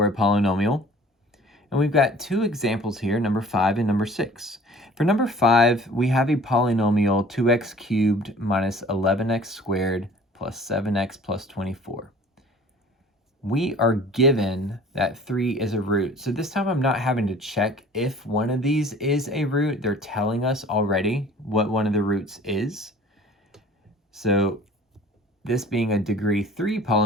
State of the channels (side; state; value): both; normal; correlation 0.48